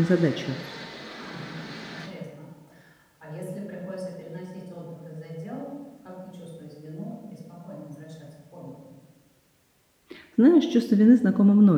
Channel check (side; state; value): both; identical; correlation 1.00